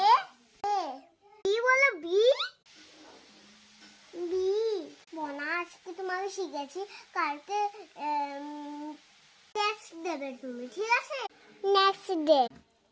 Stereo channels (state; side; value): identical; both; correlation 1.00